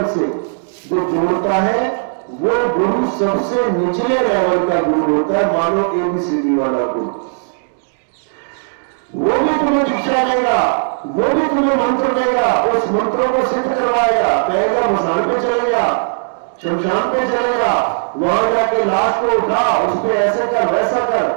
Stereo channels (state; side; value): silent; left; digital silence